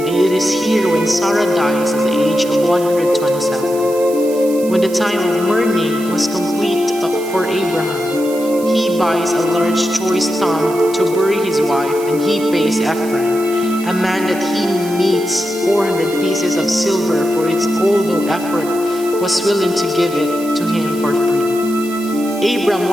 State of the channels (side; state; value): right; noise; hiss, 16 dB below the sound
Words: it is here when Sarah dies at the age of 127. When the time of mourning was complete for Abraham, he buys a large choice tomb to bury his wife, and he pays Ephron, a man that he meets 400 pieces of silver for its although effort was willing to give it to him for free. Abram